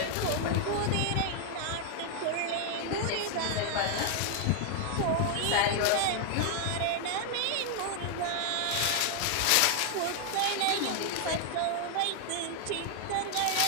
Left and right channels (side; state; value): both; different; correlation 0.00